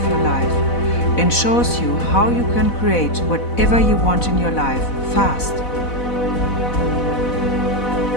your life, and shows you how you can create whatever you want in your life fast.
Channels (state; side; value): late; right; 4.0 ms